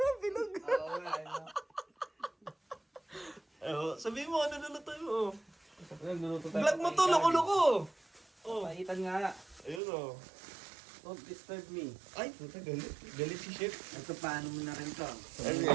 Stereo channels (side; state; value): left; drops out; at 9.8 s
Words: bilog. Oo nga, ano. Sabihin mo, ano lulutuin mo? Nagluluto tayo. Vlog mo to, loko-loko! Oh, Paitan nga. ayun oh. Don't disturb me. Ay, puta, galit. Galit si Chef. Ito, paano mo na rin to? Ano